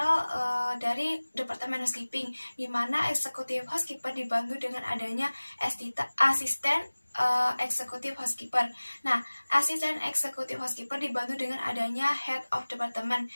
dari departemen housekeeping, di mana eksekutif housekeeper dibantu dengan adanya asisten eksekutif housekeeper. Nah, asisten eksekutif housekeeper dibantu dengan adanya head of department,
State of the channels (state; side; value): inverted; both; correlation -1.00